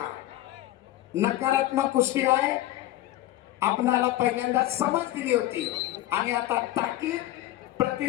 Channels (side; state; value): right; quieter; 14.9 dB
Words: नकारात्मक कुस्ती आहे. आपणाला पहिल्यांदा समज दिली होती आणि आता ताकीद,